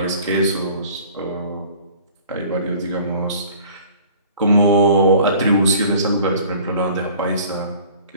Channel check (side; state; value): both; inverted; correlation -0.49